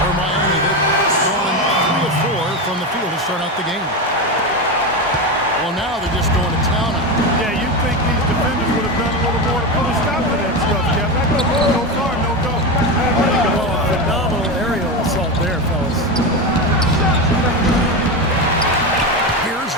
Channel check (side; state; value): both; normal; correlation 0.17